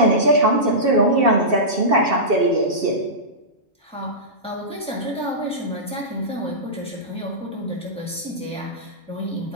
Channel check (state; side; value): normal; both; correlation -0.17